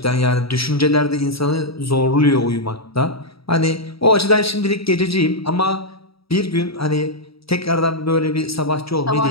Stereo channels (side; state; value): right; late; 0.76 ms